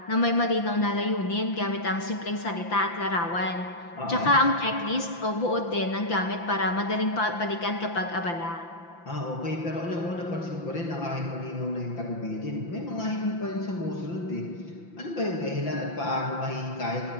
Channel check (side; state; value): right; late; 5.9 ms